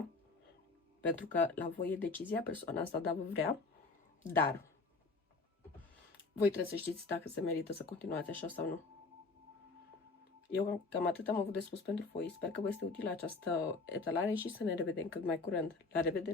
Pentru că la voi e decizia, persoana asta da vă vrea, dar voi trebuie să știți dacă se merită să continuați așa sau nu. Eu cam atât am avut de spus pentru voi. Sper că vă este utilă această etalare și să ne revedem cât mai curând. La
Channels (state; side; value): quieter; right; 3.9 dB